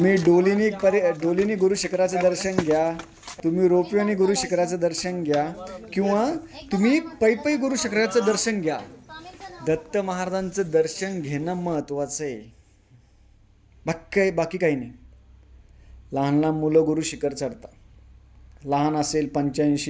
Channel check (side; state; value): both; identical; correlation 1.00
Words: डोलीनी गुरु शिखराचं दर्शन घ्या, तुम्ही रोपवेने गुरु शिखराचं दर्शन घ्या, किंवा तुम्ही पै गुरु शिखराचं दर्शन घ्या. दत्त महाराजांचं दर्शन घेणं महत्त्वाचं आहे. बाकी काही नाही. लहान लहान मुलं गुरु शिखर चढतात. लहान असेल,